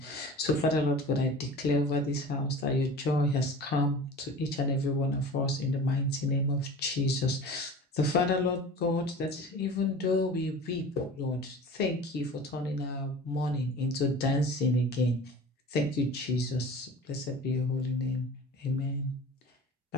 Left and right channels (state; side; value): normal; both; correlation 0.39